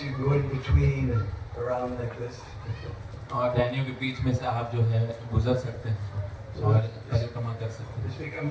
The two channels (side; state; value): both; identical; correlation 1.00